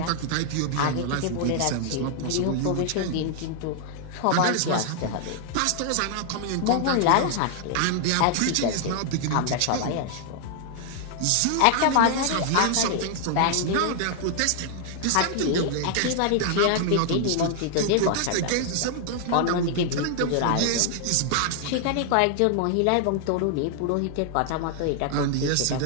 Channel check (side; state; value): both; different; correlation 0.00